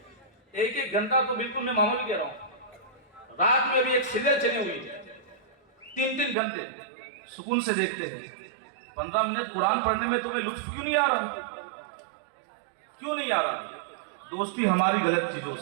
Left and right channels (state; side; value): drops out; left; at 6.4 s